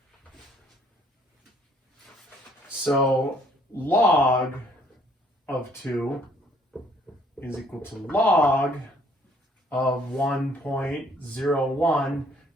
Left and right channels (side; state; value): both; normal; correlation 0.62